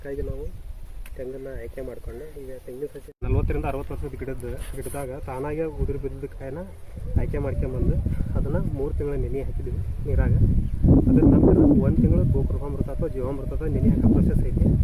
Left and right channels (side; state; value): both; identical; correlation 1.00